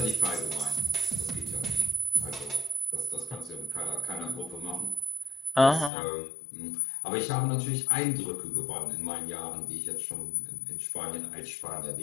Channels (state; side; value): drops out; right; at 5.9 s